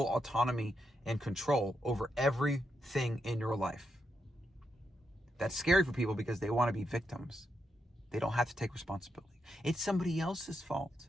autonomy and control over everything in your life. That's scary for people because they want to be victims. They don't have to take responsibility. It's somebody else's fault.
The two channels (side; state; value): both; normal; correlation 0.83